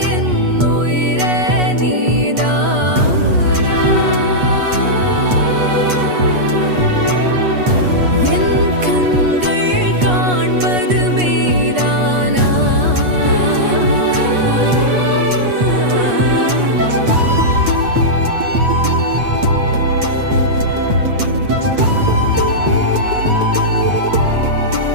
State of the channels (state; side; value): late; left; 8.2 ms